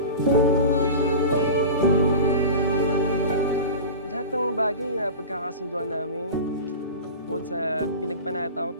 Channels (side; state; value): both; inverted; correlation -0.31